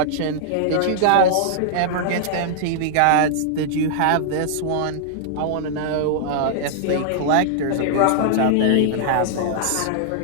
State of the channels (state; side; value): different; both; correlation -0.01